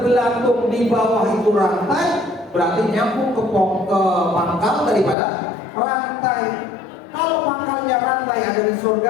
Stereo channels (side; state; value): right; drops out; at 5.2 s